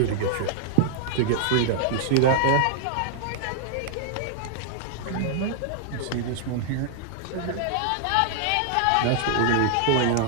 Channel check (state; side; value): different; both; correlation -0.01